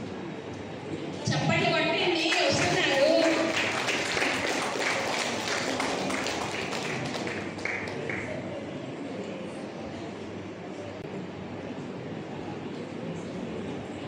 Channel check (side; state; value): both; identical; correlation 1.00